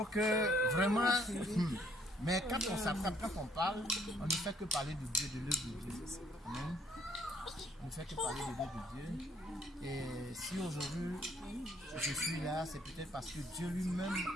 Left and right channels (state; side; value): normal; both; correlation 0.64